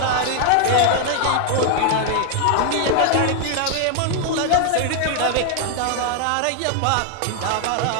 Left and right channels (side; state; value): both; different; correlation 0.00